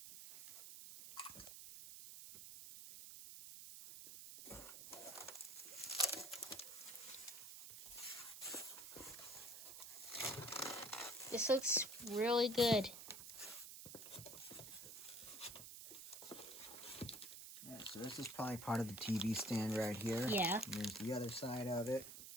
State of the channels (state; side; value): noise; right; hiss, 11 dB below the sound